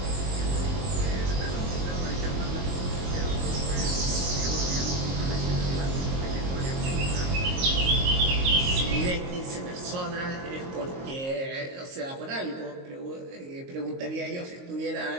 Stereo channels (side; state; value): left; late; 22 ms